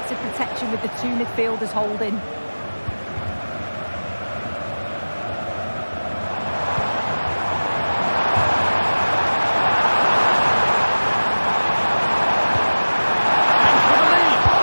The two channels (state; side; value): inverted; both; correlation -1.00